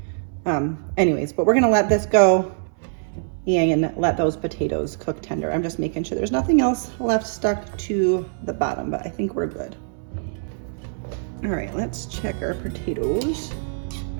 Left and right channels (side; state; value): left; silent; 63 dB below the other